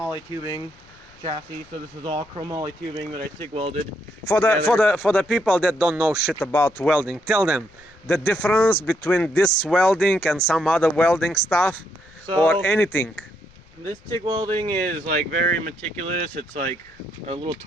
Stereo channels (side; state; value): left; noise; rumble, 28 dB below the sound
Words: tubing chassis. So this is all chromoly tubing that I TIG welded. For the people that don't know shit about welding, tell them the difference between this welding and some other welding stuff, or anything. This TIG welding is like very meticulous. It's like a little